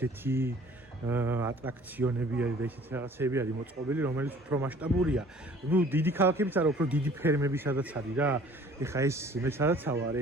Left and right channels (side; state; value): both; normal; correlation 0.52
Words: ატრაქციონები არის და ისეთი რაღაცები არის მოწყობილი, რომელიც უფრო მასშტაბურია. ნუ დიდი ქალაქებიც არა, უფრო დიდი ფერმები სადაც არის რა. ეხა ეს მე სადაც ვარ,